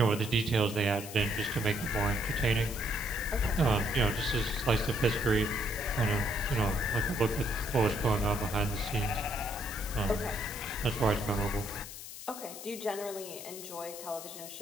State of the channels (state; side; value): noise; left; hiss, 11 dB below the sound